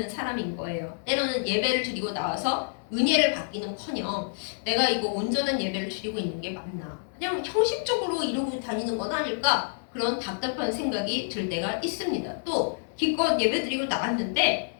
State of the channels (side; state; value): right; silent; 59 dB below the other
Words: 사람인 거예요. 때로는 예배를 드리고 나와서 은혜를 받기는커녕 내가 이거 온전한 예배를 드리고 있는 게 맞나? 그냥 형식적으로 이러고 다니는 건 아닐까? 그런 답답한 생각이 들 때가 있습니다. 또 기껏 예배 드리고 나왔는데